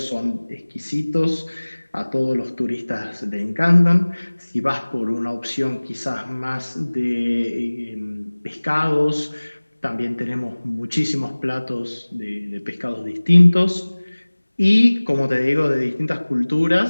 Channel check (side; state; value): both; inverted; correlation -1.00